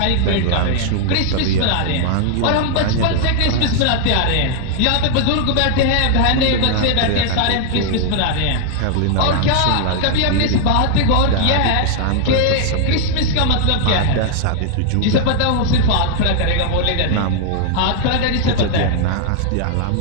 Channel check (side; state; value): both; different; correlation 0.00